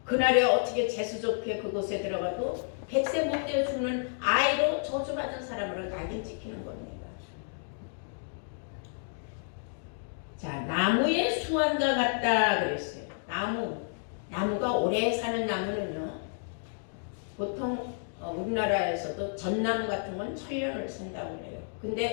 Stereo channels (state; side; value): silent; right; digital silence